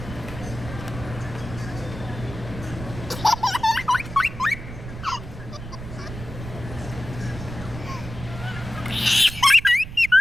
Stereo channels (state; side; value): noise; right; rumble, 11 dB below the sound